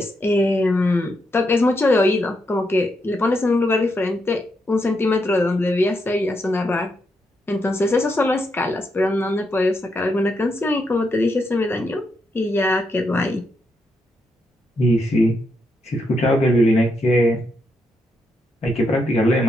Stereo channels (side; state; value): both; normal; correlation 0.81